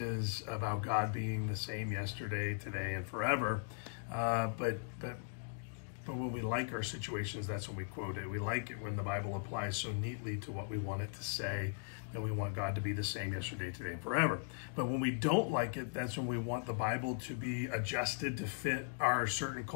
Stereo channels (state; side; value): silent; right; digital silence